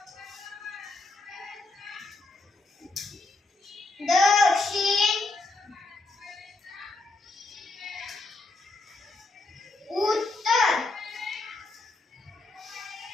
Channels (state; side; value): quieter; right; 3.3 dB